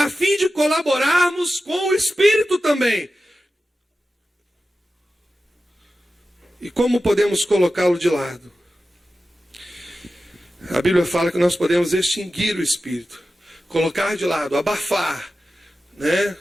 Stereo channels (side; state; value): both; normal; correlation 0.93